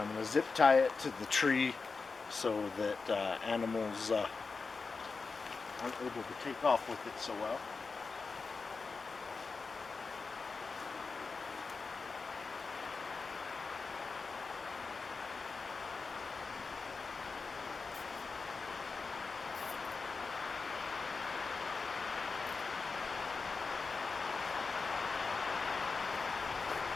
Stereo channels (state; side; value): quieter; right; 4.5 dB